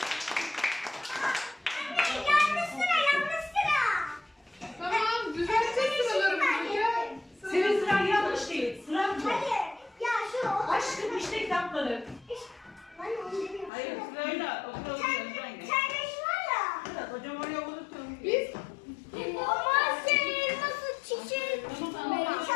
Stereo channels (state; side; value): drops out; right; at 13.7 s